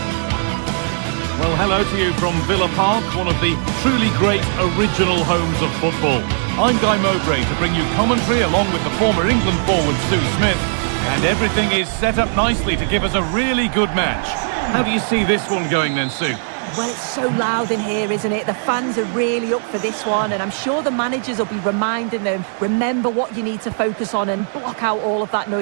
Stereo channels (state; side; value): silent; left; digital silence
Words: Well, hello to you from Villa Park, one of the truly great original homes of football. I'm Guy Mowbray to bring you commentary along with the former England forward Sue Smith. And everything is set up nicely to give us a really good match. How do you see this one going then, Sue? Well, it's so loud in here, isn't it? The fans are really up for this one, and I'm sure the managers will be reminding them, remember what you need to focus on and block out all of that